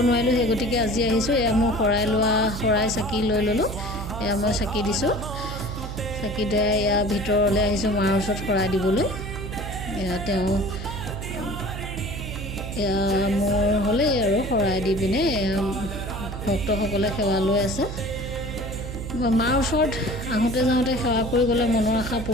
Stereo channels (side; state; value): right; noise; hum, 7 dB below the sound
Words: নোৱাৰিলোঁ, সেই গতিকে আজি আহিছোঁ। এয়া মোৰ শৰাই চাকি লৈ ল'লোঁ। এয়া মই চাকি দিছোঁ, চাকি দিয়া এয়া ভিতৰলৈ আহিছোঁ মাৰ ওচৰত শৰাই দিবলৈ। এয়া তেওঁ এয়া মোৰ হ'লেই আৰু শৰাই দি পিনে ভক্তসকলে সেৱা লৈ আছে। মাৰ ওচৰত আহোঁতে যাওঁতে সেৱা কৰি গ'লে মনৰ আশা